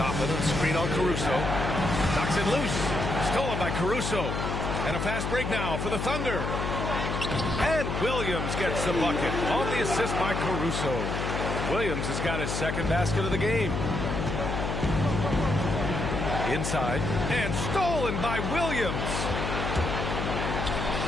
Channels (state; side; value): noise; left; hum, 2 dB below the sound